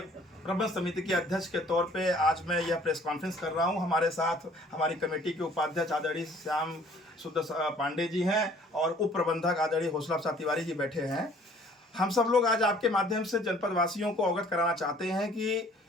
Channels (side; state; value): both; normal; correlation 0.56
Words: प्रबंध समिति के अध्यक्ष के तौर पे आज मैं यह प्रेस कॉन्फ्रेंस कर रहा हूं। हमारे साथ हमारी कमेटी के उपाध्यक्ष आदरणीय श्याम सुंदर पांडे जी हैं और उप प्रबंधक आदरणीय हौसला प्रसाद तिवारी जी बैठे हैं। हम सब लोग आज आपके माध्यम से जनपद वासियों को अवगत कराना चाहते हैं कि